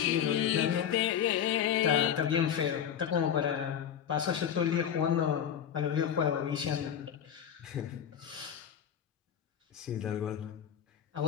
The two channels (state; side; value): quieter; right; 9.0 dB